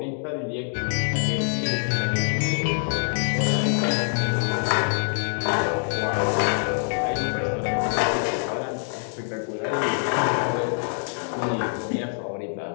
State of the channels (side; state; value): right; silent; digital silence